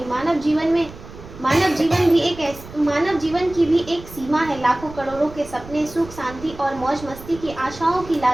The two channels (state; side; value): noise; right; rumble, 16 dB below the sound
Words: मानव जीवन की भी एक सीमा है। लाखों करोड़ों के सपने, सुख शांति और मौज मस्ती की आशाओं की